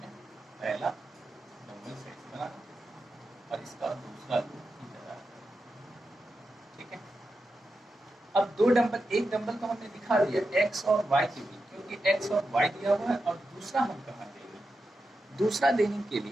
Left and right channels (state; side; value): normal; both; correlation 0.89